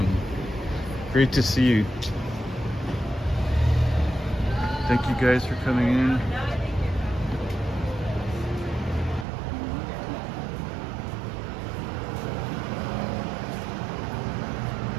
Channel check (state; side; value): drops out; left; at 9.2 s